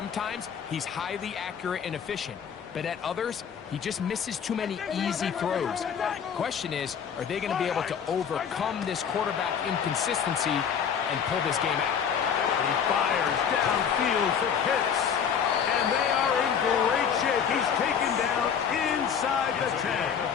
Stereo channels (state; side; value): quieter; right; 7.5 dB